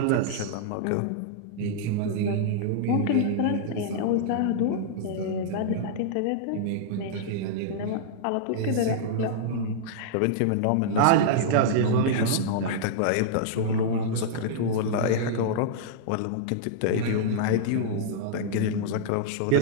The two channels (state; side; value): different; both; correlation -0.02